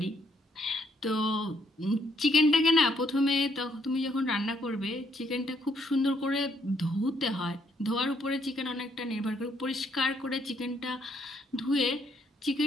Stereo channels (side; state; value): both; normal; correlation 0.71